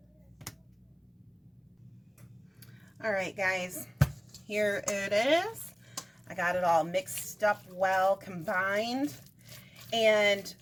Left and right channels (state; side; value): identical; both; correlation 1.00